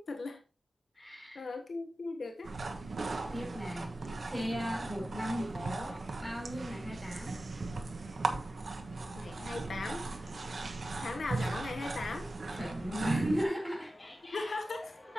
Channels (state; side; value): normal; both; correlation 0.94